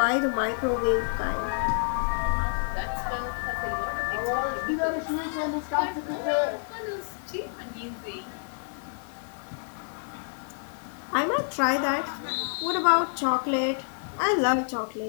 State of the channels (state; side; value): silent; right; digital silence